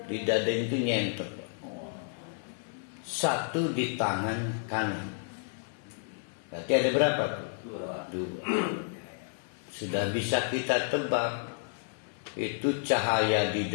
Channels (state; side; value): silent; right; digital silence